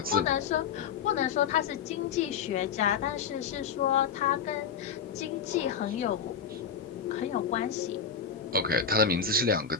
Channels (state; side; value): quieter; right; 6.8 dB